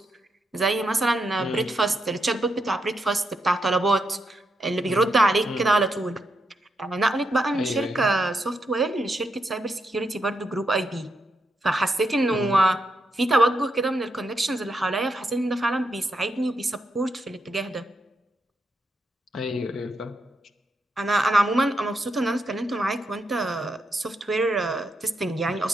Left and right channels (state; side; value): normal; both; correlation 0.82